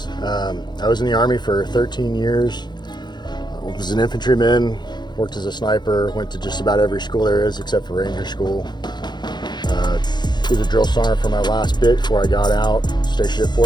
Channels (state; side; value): late; right; 0.21 ms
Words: I was in the Army for 13 years. I was an infantryman, worked as a sniper, went to just about every school there is except for Ranger School. Was a drill sergeant for my last bit before I got out, stationed at